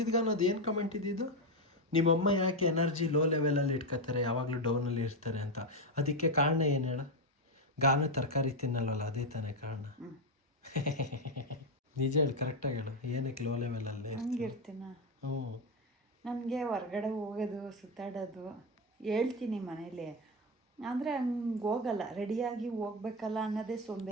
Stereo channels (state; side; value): normal; both; correlation 0.09